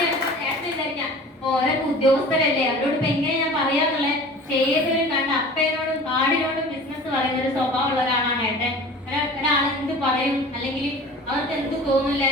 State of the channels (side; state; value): both; normal; correlation 0.41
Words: ഓരോ ഉദ്യോഗസ്ഥരല്ലേ അവരോട് ഇപ്പൊ എങ്ങനെ ഞാൻ പറയാന്നുള്ളത്. ഏതൊരു കണ്ട അപ്പേനോടും കാടിനോടും ബിസിനസ് പറയുന്ന ഒരു സ്വഭാവമുള്ള ഒരാളാണ് ഏട്ടൻ. ഒരാൾ എന്ത് പറയും അല്ലെങ്കിൽ അവർക്ക് എന്ത് തോന്നില്ല.